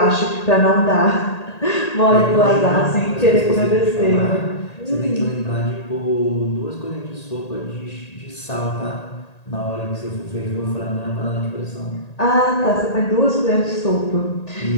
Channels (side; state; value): right; late; 1.8 ms